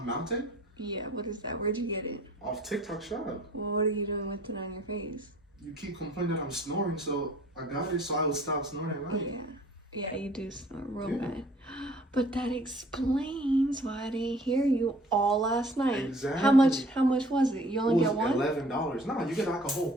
mountain? Yeah, what is that? Where'd you get it? Off TikTok shop. Well, what are you doing with it on your face? You keep complaining that I'm snoring, so I got it so I would stop snoring at Oh, night. yeah. Yeah, you do snore real Yeah. bad. But that explains why I didn't hear you all last night. Exactly. How much was it? You only get one? $11. No, you get like a whole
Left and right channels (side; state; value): both; normal; correlation 0.54